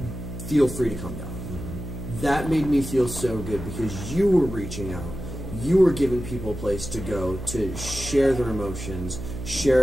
feel free to come down. That made me feel so good because you were reaching out, you were giving people a place to go to share their emotions,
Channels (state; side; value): noise; right; hum, 9 dB below the sound